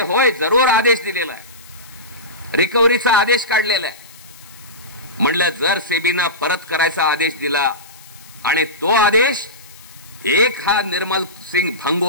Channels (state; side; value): noise; left; hiss, 22 dB below the sound